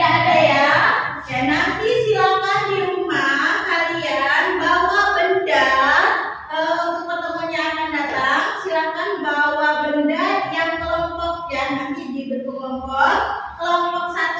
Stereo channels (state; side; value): identical; both; correlation 1.00